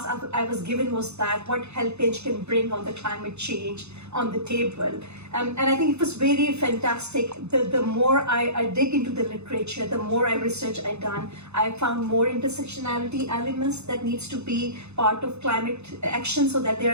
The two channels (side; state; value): left; late; 0.81 ms